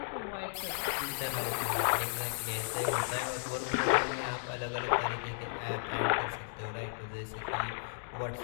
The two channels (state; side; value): silent; right; digital silence